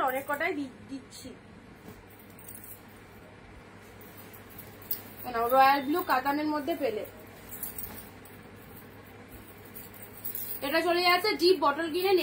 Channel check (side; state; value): both; identical; correlation 1.00